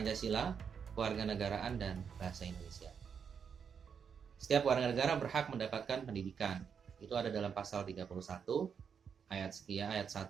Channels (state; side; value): quieter; left; 6.9 dB